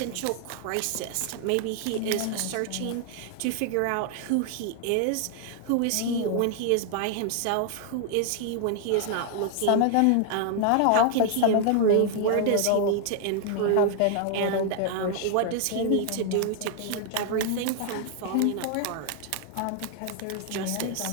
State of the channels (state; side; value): different; both; correlation 0.00